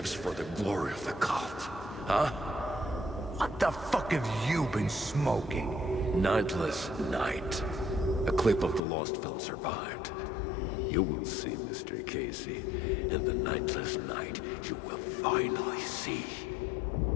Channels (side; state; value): right; drops out; at 8.8 s